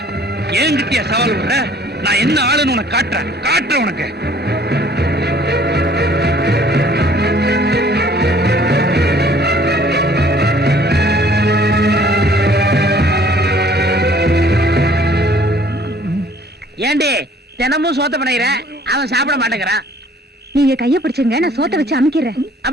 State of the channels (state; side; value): normal; both; correlation 0.56